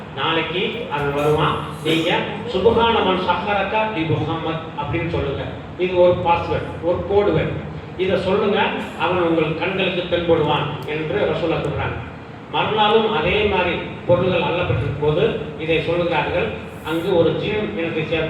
நாளைக்கு அவன் வருவான், நீங்க சுப்ஹான மன் சஹரக பி முஹம்மத் அப்படின்னு சொல்லுங்க. இது ஒரு பாஸ்வேர்ட், ஒரு கோட் வேர்ட். இதை சொல்லுங்க, அவன் உங்கள் கண்களுக்கு தென்படுவான் என்று ரசூலுல்லாஹ் சொல்றாங்க. மறுநாளும் அதே மாதிரி பொருள்கள் அள்ளப்பட்டிருக்கும் போது இதை சொல்லுகிறார்கள். அங்கு ஒரு ஜின் இனத்தை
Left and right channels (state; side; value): identical; both; correlation 1.00